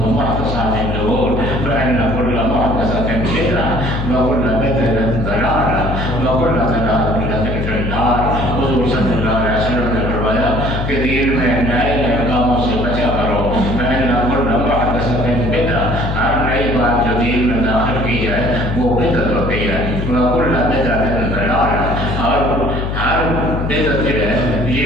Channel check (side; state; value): left; noise; hum, 2 dB below the sound